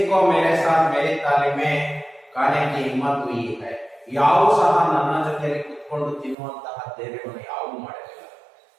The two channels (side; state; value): left; drops out; at 6.4 s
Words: को मेरे साथ मेरी तालीम में खाने की हिम्मत हुई है. ಯಾವು ಸಹ ನನ್ನ ಜೊತೆಯಲ್ಲಿ ಕುತ್ಕೊಂಡು ತಿನ್ನುವಂತಹ ಧೈರ್ಯವನ್ನು ಯಾವು ಮಾಡಲಿಲ್ಲ.